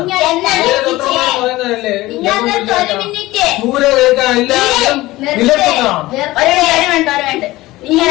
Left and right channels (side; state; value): right; quieter; 18.3 dB